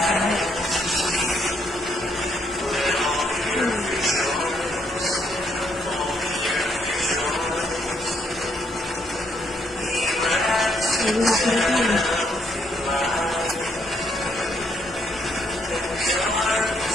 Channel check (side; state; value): both; normal; correlation 0.72